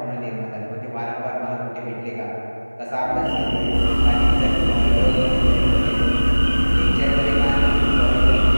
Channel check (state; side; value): inverted; both; correlation -1.00